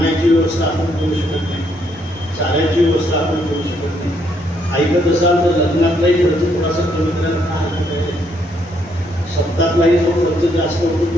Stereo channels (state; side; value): normal; both; correlation 0.72